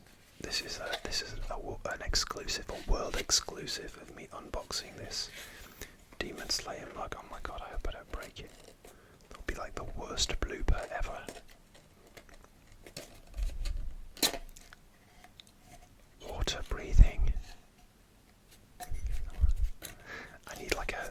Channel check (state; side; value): identical; both; correlation 1.00